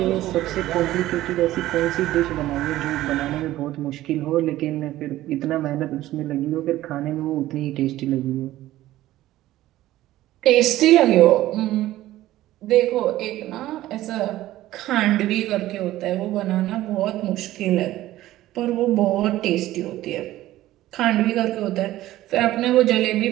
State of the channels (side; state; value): left; quieter; 15.2 dB